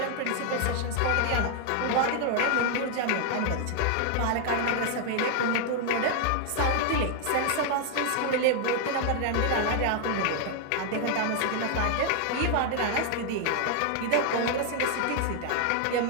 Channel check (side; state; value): both; different; correlation 0.00